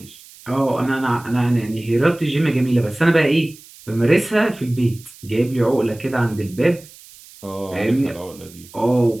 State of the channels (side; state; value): right; noise; hiss, 22 dB below the sound